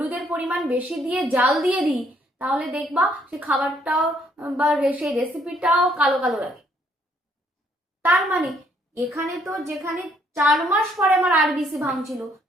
পরিমাণ বেশি দিয়ে জাল দিয়ে দিই তাহলে দেখবা সেই খাবারটাও বা সেই রেসিপিটাও কালো কালো লাগে। তার মানে এখানে তো যেখানে 4 মাস পরে আমার আরবিসি ভাঙছিল,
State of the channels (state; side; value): normal; both; correlation 0.68